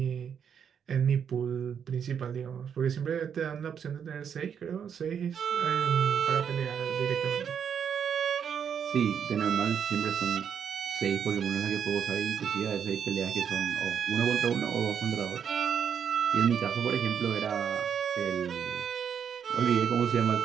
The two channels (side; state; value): left; quieter; 7.7 dB